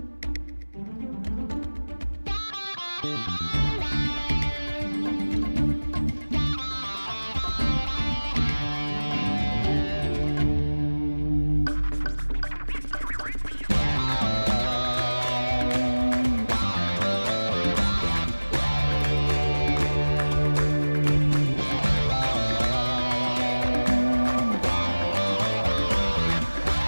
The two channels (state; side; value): inverted; both; correlation -1.00